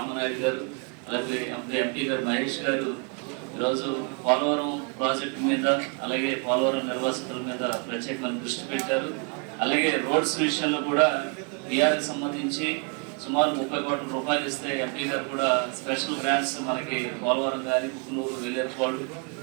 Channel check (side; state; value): left; quieter; 34.6 dB